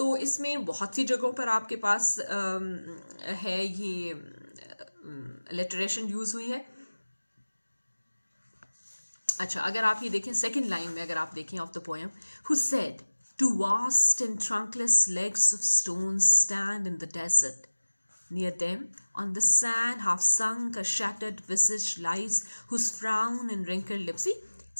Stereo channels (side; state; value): both; inverted; correlation -1.00